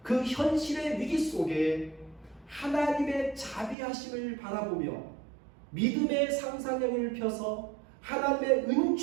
그 현실의 위기 속에 하나님의 자비하심을 바라보며 믿음의 상상력을 펴서 하나님의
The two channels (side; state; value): left; drops out; at 3.8 s